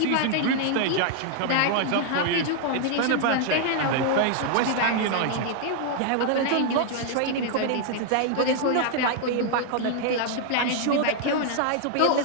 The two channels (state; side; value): different; both; correlation 0.00